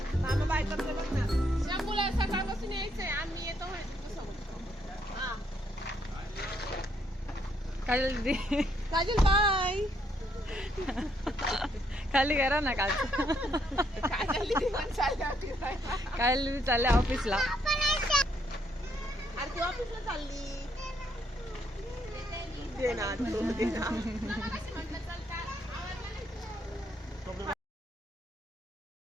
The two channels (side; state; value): both; normal; correlation 0.73